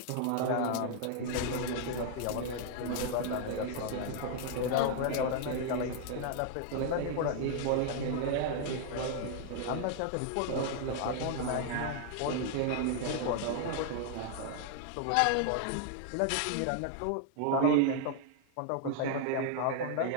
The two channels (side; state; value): both; different; correlation 0.00